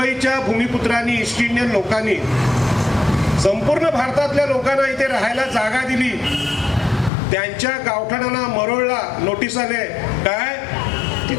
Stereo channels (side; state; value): right; drops out; at 7.1 s